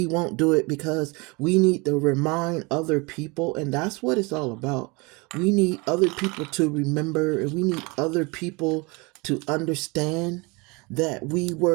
won't do it because we need to remind other people, and that's what it's all about. We need other people to remember, and we need other people to understand that we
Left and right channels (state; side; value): quieter; left; 27.3 dB